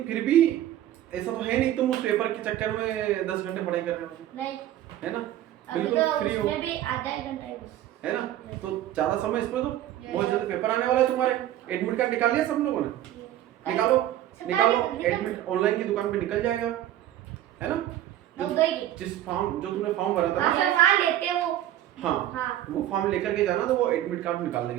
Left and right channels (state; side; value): quieter; left; 12.9 dB